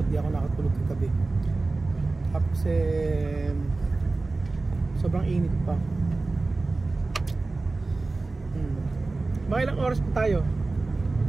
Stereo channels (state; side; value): quieter; left; 3.4 dB